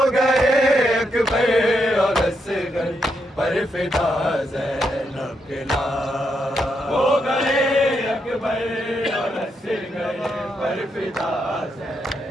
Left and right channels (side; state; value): both; normal; correlation 0.80